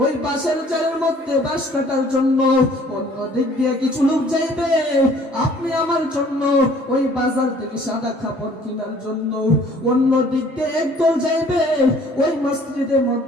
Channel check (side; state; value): both; normal; correlation 0.55